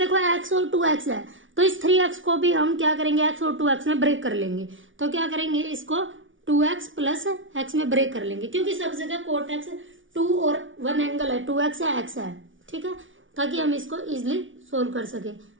x और 2x है, तो इस 3x को भी हम क्या करेंगे x और 2x में ब्रेक कर लेंगे, तो क्या करेंगे इसको 2x प्लस x में ब्रेक कर लेंगे, क्योंकि सब जगह कोट x 2 और 1 एंगल है, 2x है x है। ठीक है, ताकि हम इसको इजिली सोल्व कर सके।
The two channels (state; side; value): late; left; 0.57 ms